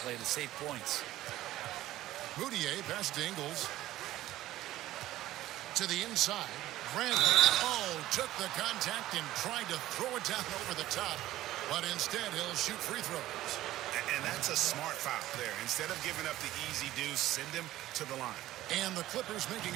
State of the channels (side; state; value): left; quieter; 15.0 dB